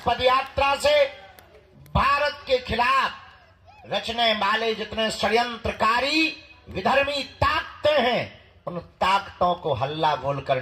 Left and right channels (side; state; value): both; identical; correlation 1.00